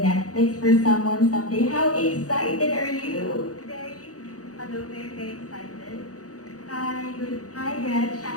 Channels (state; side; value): late; right; 0.66 ms